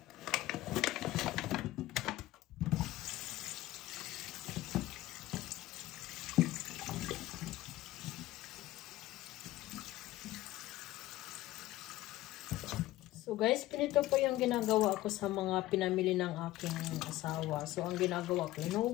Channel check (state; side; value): quieter; right; 16.4 dB